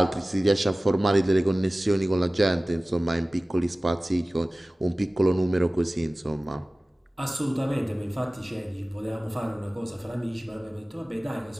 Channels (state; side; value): normal; both; correlation 0.97